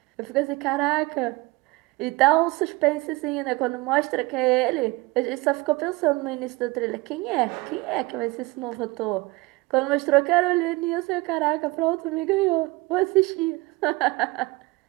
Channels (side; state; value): left; quieter; 22.7 dB